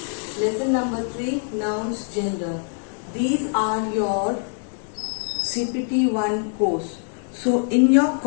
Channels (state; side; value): silent; right; 56 dB below the other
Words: Lesson number 3, nouns, gender. These are your CPT 1 course. So in your